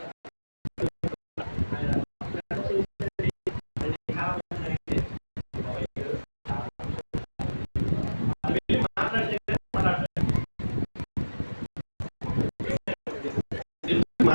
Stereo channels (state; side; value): inverted; both; correlation -1.00